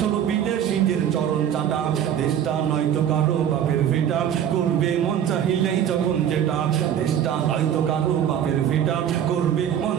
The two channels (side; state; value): left; quieter; 9.6 dB